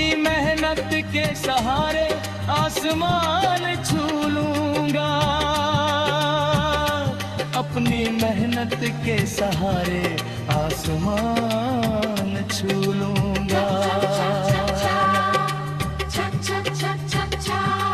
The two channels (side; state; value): both; identical; correlation 1.00